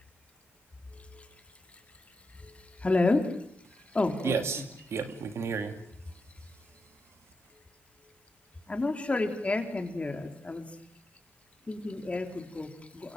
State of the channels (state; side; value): normal; both; correlation 0.86